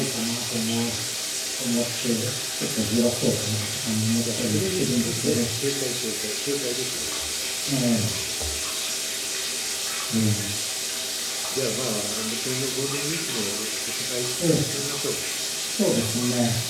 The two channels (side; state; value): both; identical; correlation 1.00